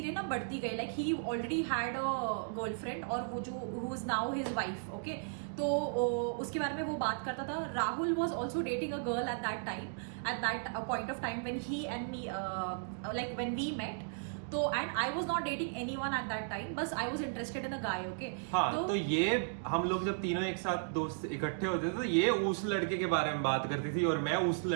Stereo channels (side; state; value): left; silent; digital silence